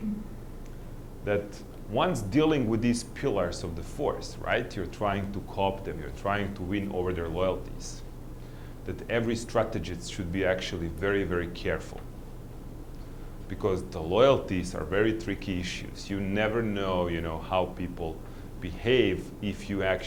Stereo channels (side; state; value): both; identical; correlation 1.00